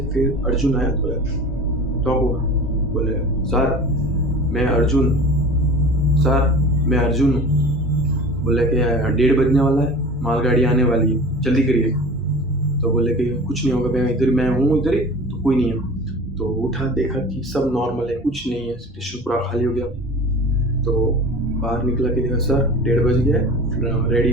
फिर अर्जुन आया, बोला टॉप हुआ, बोले सर मैं अर्जुन हूँ। बोले कि 1:30 बजने वाला है, मालगाड़ी आने वाली है, जल्दी करिए। तो बोले कि कुछ नहीं होगा, मैं हूँ इधर ही, तो कोई नहीं है। तो उठा, देखा कि सब नॉर्मल है, कुछ नहीं है, स्टेशन पूरा खाली हो गया। तो बाहर निकला कि देखा सर 1:30 बज गया है,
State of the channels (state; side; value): normal; both; correlation 0.38